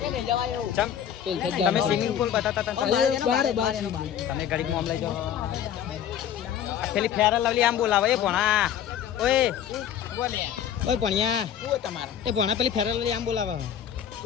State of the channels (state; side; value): quieter; right; 9.5 dB